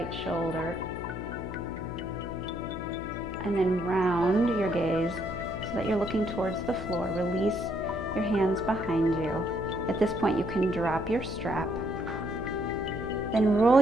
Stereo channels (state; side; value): noise; left; hum, 8 dB below the sound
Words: shoulder. And then round your gaze so that you're looking towards the floor. Release your hands behind you. At this point, you can drop your strap. Then roll